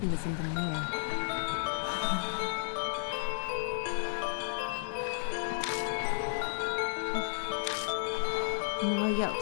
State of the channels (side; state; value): right; silent; 56 dB below the other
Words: is in the mirror. Moe